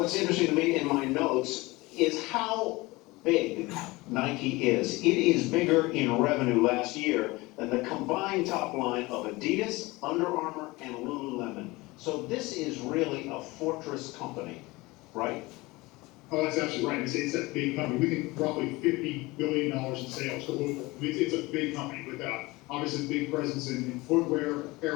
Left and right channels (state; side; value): quieter; right; 22.0 dB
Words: interesting to me in my notes is how big Nike is. It is bigger in revenue last year than the combined top line of Adidas, Under Armour, and Lululemon. So this is really a fortress company, right? Oh, that's absolutely right. It's a big company. We think roughly $50 billion in sales globally. It's a big company with obviously a big presence in footwear,